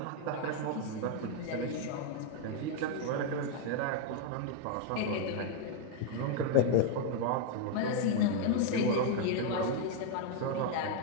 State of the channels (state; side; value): different; both; correlation 0.00